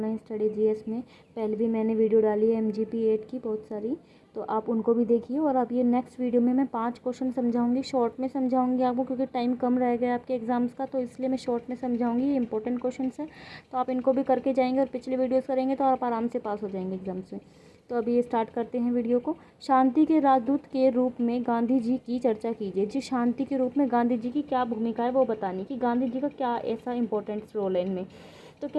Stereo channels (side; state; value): both; identical; correlation 1.00